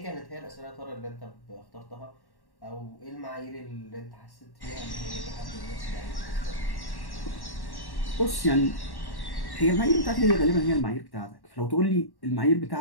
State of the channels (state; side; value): late; right; 1.1 ms